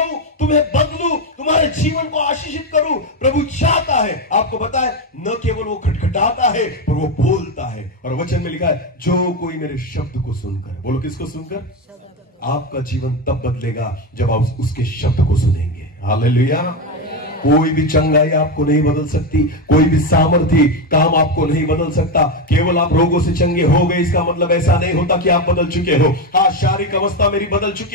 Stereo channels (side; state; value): both; normal; correlation 0.12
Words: तुम्हें बदलूं, तुम्हारे जीवन को आशीषित करूं। प्रभु चाहता है, आपको पता है, न केवल वो खटखटाता है पर वो बोलता है। और वचन में लिखा है, जो कोई मेरे शब्द को सुनकर, बोलो किसको सुनकर? आपका जीवन तब बदलेगा जब आप उसके शब्द को सुनेंगे। हालेलुया। कोई भी चंगाई आपको नहीं बदल सकती, कोई भी सामर्थ्य काम आपको नहीं बदल सकता। केवल आप रोगों से चंगे हो गए, इसका मतलब ऐसा नहीं होता कि आप बदल चुके हो। हाँ, शारीरिक अवस्था मेरी बदल